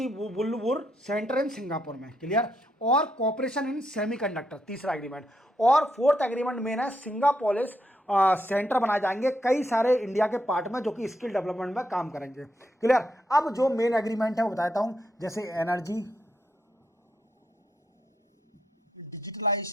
सेंटर इन सिंगापुर में। क्लियर? और कॉपरेशन इन सेमीकंडक्टर, तीसरा एग्रीमेंट। और फोर्थ एग्रीमेंट मेन है, सिंगापोलिस सेंटर बनाए जाएंगे कई सारे इंडिया के पार्ट में, जो कि स्किल डेवलपमेंट में काम करेंगे। क्लियर? अब जो मेन एग्रीमेंट है वो बताता हूं, जैसे energy,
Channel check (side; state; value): both; normal; correlation 0.78